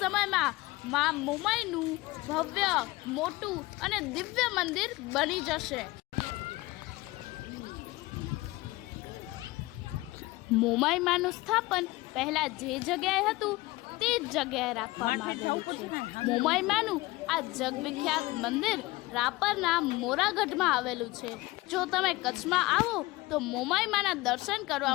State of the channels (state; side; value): quieter; right; 20.7 dB